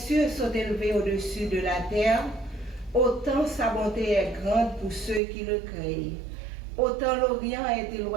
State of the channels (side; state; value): left; drops out; at 5.2 s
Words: sont élevés au-dessus de la terre, autant sa bonté est grande pour ceux qui le craignent. Autant l'Orient est